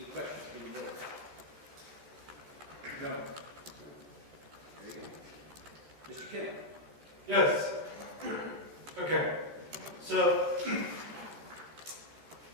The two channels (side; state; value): left; late; 14 ms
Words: questions from the board? No. Very good. Mr. Kim? Yes. Okay. So